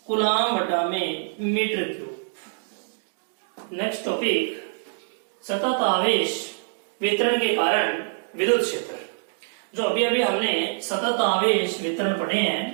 कूलाम बटा में मीटर क्यूब। नेक्स्ट टॉपिक, सतत आवेश वितरण के कारण विद्युत क्षेत्र। जो अभी अभी हमने सतत आवेश वितरण पढ़े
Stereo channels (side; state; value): left; silent; digital silence